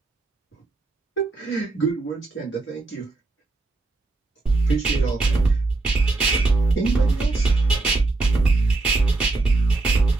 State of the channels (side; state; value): left; quieter; 3.3 dB